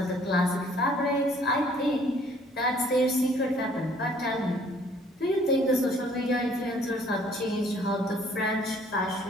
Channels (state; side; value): normal; both; correlation 0.59